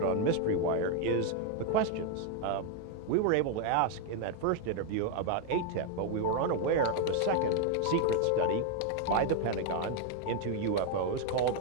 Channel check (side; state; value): both; different; correlation 0.01